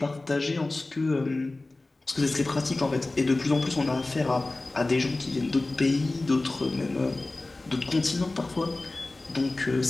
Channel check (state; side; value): quieter; right; 3.0 dB